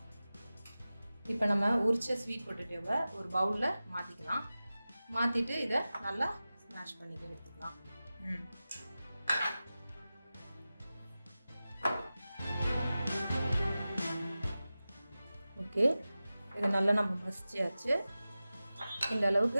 இப்போ நம்ம உரிச்ச ஸ்வீட் பொட்டேட்டோவை ஒரு பவுலில் மாற்றிக்கலாம். மாற்றிட்டு இதை நல்லா ஸ்மாஷ் பண்ணி எடுத்துக்கலாம். ஓகே, இது நல்லா நம்ம மசிச்சாச்சு. இந்த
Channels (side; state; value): both; inverted; correlation -0.95